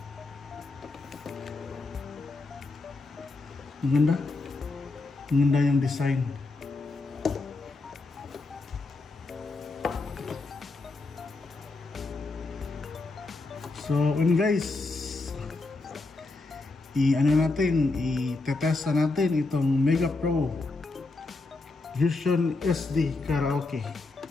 Maganda yung design. So guys, i-test natin itong Mega Pro Vision SD Karaoke.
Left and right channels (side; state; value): right; quieter; 3.5 dB